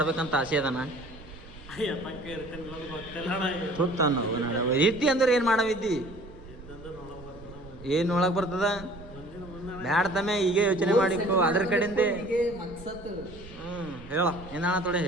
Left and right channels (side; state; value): right; noise; rumble, 18 dB below the sound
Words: ಆಸೆ ಅದನ. ಇದ್ದಿ ಅಂದ್ರೆ ಏನ್ ಮಾಡವಿದ್ದಿ? ಏನ್ ನೋಡಕ್ ಬರ್ತದ? ಬ್ಯಾಡ ತಮ್ಮೆ ಈಗ ಯೋಚನೆ ಮಾಡಿಕೊ ಅದ್ರ ಕಡೆಯಿಂದ. ಹೇಳ ಏನಾಣ ತೊಡೆ